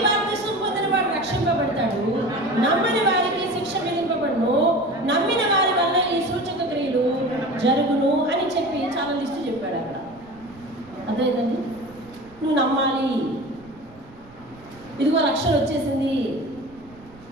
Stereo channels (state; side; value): noise; right; rumble, 24 dB below the sound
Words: బాప్తిసం పొందిన వాడు రక్షింపబడతాడు, నమ్మని వారికి శిక్ష విధింపబడును, నమ్మిన వారి వల్ల ఈ సూచక క్రియలు జరుగును అని చెప్పి చాలా లిస్టు చెప్పాడు అక్కడ. అదేంటండి? నువ్వు నమ్మాలి. ఇదిగో రక్షణ వచ్చేసింది.